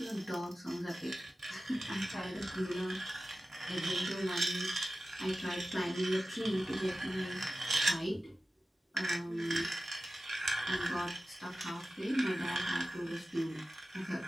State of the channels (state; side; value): normal; both; correlation 0.95